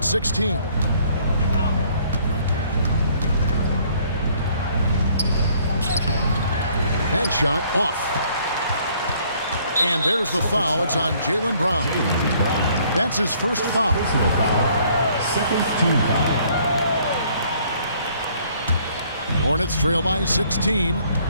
16. That shot off. And there's the foul. It's on Jaylen Brown. That's his first foul. Second team foul. Hornets trail by 16.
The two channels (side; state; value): both; inverted; correlation -0.62